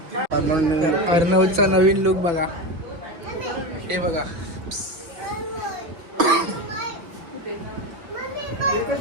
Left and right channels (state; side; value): late; left; 6.0 ms